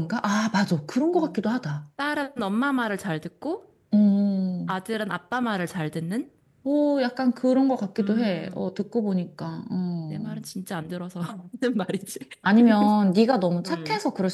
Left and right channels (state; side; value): identical; both; correlation 1.00